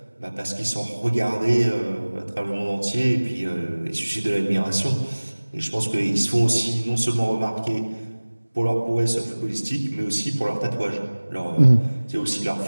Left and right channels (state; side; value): inverted; both; correlation -1.00